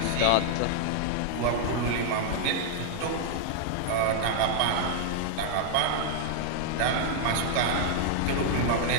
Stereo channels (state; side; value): different; both; correlation 0.00